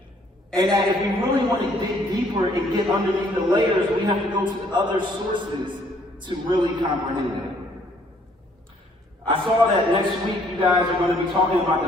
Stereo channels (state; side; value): normal; both; correlation 0.63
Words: And that if we really want to dig deeper and get underneath the layers, we have to go to other sources to really comprehend it. I saw that next week you guys are going to be talking about